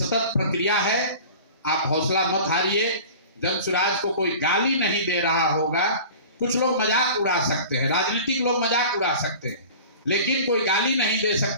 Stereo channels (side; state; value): both; inverted; correlation -0.40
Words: प्रक्रिया है, आप हौसला मत हारिए। जन स्वराज को कोई गाली नहीं दे रहा होगा। कुछ लोग मजाक उड़ा सकते हैं, राजनीतिक लोग मजाक उड़ा सकते हैं, लेकिन कोई गाली नहीं दे